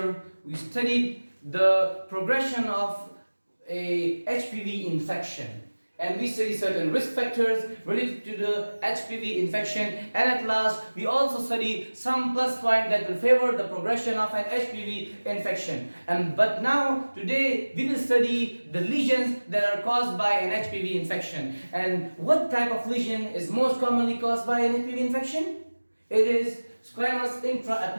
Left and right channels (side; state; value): both; inverted; correlation -1.00